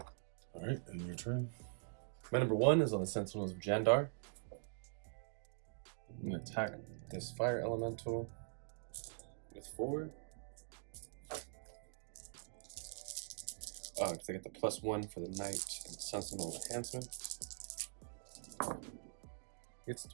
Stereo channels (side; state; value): left; silent; digital silence